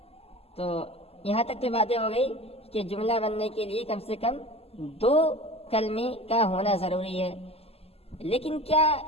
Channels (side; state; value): right; late; 0.29 ms